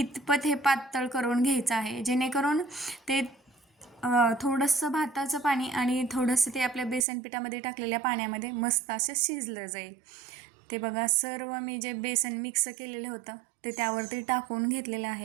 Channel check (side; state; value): left; drops out; at 7.1 s